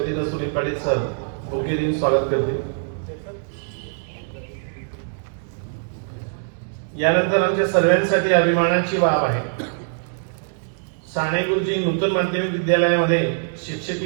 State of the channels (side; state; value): left; silent; digital silence